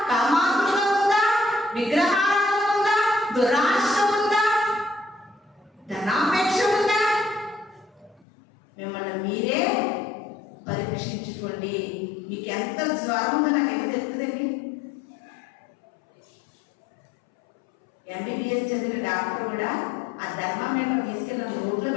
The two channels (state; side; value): drops out; right; at 8.2 s